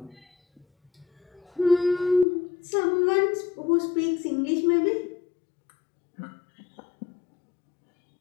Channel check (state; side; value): drops out; right; at 2.2 s